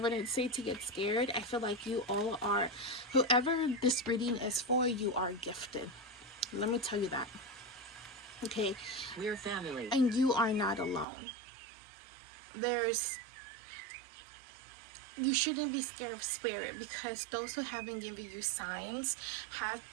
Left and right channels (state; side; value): drops out; left; at 11.1 s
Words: say to get scared. I feel like you all are, whoever this reading is for, you are gifted. Let me tell you that. Okay. We're family. And you are not alone. There's you shouldn't be scared of spirit, because those who haven't given you signs have